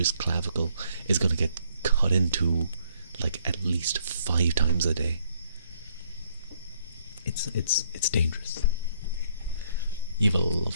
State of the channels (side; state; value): both; inverted; correlation -0.68